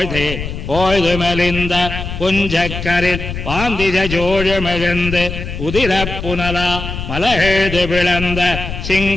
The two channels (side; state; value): left; noise; rumble, 7 dB below the sound